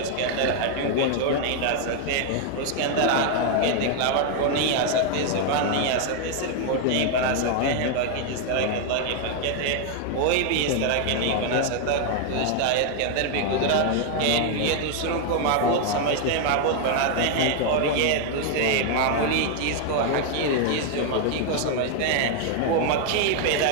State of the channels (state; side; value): different; both; correlation 0.00